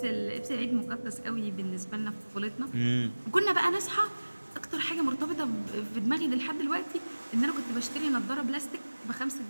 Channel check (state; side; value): inverted; both; correlation -1.00